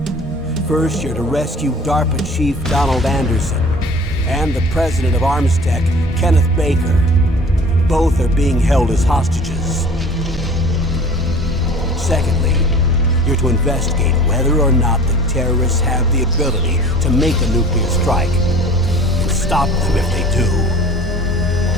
First, you're to rescue DARPA Chief Donald Anderson and the president of Armstech, Kenneth Baker. Both are being held as hostages. Secondly, you're to investigate whether or not the terrorists have the ability to make a nuclear strike and stop them if they do.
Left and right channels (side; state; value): both; normal; correlation 0.44